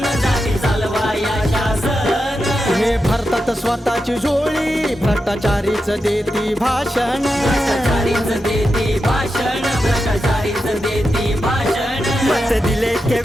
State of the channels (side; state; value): both; normal; correlation 0.88